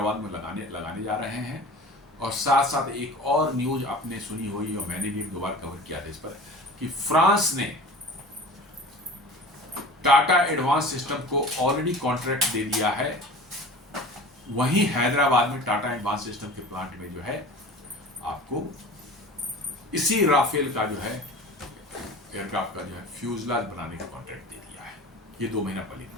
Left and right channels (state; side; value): normal; both; correlation 0.39